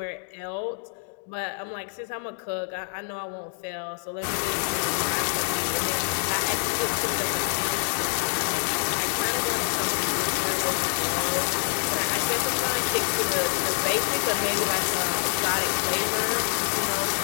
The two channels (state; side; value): silent; right; digital silence